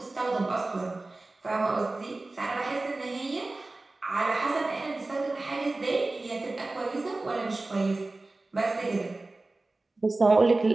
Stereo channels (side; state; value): left; quieter; 3.1 dB